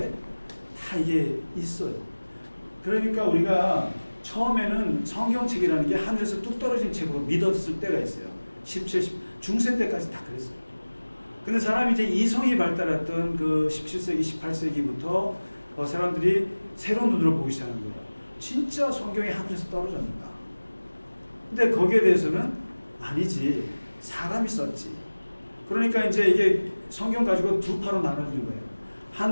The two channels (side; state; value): both; inverted; correlation -1.00